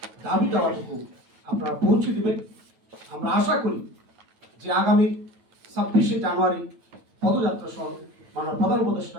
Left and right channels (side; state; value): left; late; 9.2 ms